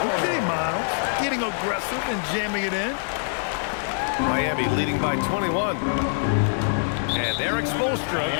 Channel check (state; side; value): silent; right; 57 dB below the other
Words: Okay, Miles. Getting aggressive and jamming it in. Miami leading by 21. And Eric Spoelstra